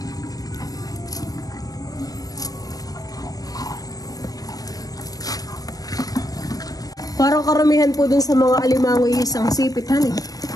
Parang karamihan po dun sa mga alimango isang sipit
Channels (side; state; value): right; late; 0.18 ms